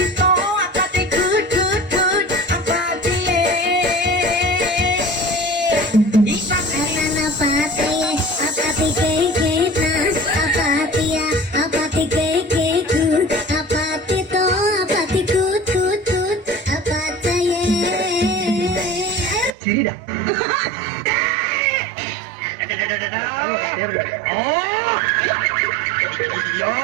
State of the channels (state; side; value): drops out; left; at 19.5 s